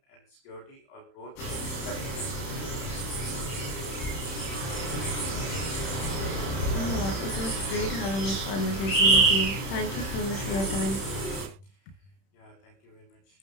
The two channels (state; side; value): late; right; 31 ms